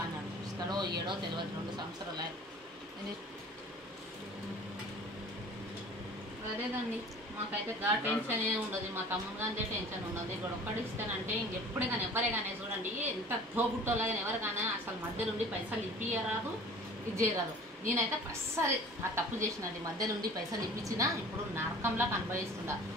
అన్నాడు ఇస్తాడో ఏడో తెలియదు 2 సంవత్సరాలు అదేదండి మాకైతే టెన్షన్ ఏ ఉండదు మా తమ్ముడు కానీ టెన్షన్ ఉండదు ఇక్కడ ఒక్కటి ఇస్తానంటే ఇంకెప్పుడే కానీ ఎవరే కానీ చూడండి ఎంత తోబుట్టోలా కానీ ఎవరు కానీ అసలు మధ్యలో ఉండి పైసలు ఇప్పియరాదు ఇది చేయరాదు నేనైతే అస్సలు ఆ తప్పు చేసినది మధ్యలో ఉండి పైసలు ఇప్పించినా ఇప్పుడు నరకంలా అనుభవిస్తుందా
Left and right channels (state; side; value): normal; both; correlation 0.45